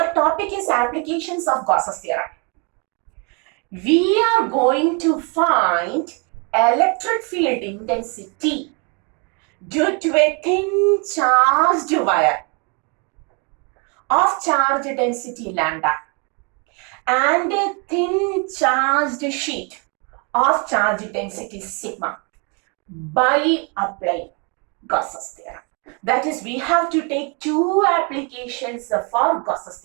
topic is applications of Gauss's theorem. We are going to find electric field intensity due to a thin charged wire of charge density lambda and a thin charged sheet of charge density sigma by applying Gauss's theorem. That is, we have to take two applications for Gauss's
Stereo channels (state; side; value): quieter; left; 34.3 dB